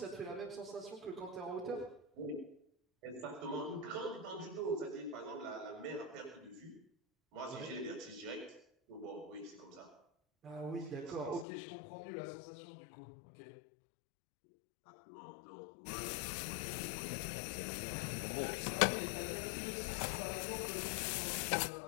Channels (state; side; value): drops out; right; at 11.5 s